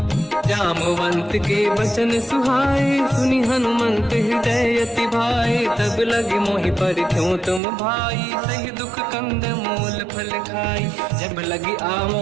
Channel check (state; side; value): drops out; left; at 7.6 s